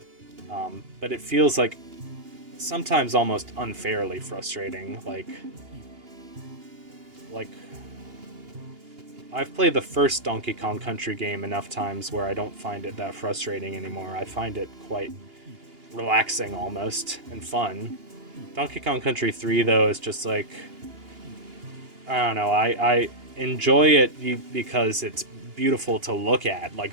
But it feels like sometimes almost unfairly frustrating. Like I've played the first Donkey Kong Country game enough times where I don't find it that frustrating anymore. I find it quite relaxing almost and fun. Donkey Kong Country 3 though is just like, I don't know, I enjoy it because it's beautiful to look at.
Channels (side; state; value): left; late; 2.8 ms